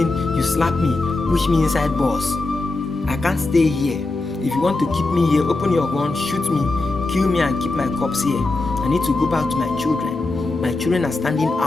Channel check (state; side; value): quieter; right; 3.2 dB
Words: you slap me, push me inside bus. I can't stay here. If you want to keep me here, open your gun, shoot me, kill me and keep my corpse here. I need to go back to my children. My children are standing